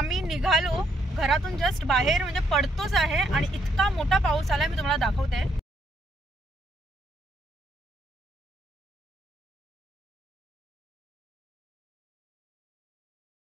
निघालो घरातून जस्ट बाहेर म्हणजे पडतोच आहे आणि इतका मोठा पाऊस आला, मी तुम्हाला दाखवते.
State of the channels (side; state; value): both; normal; correlation 0.73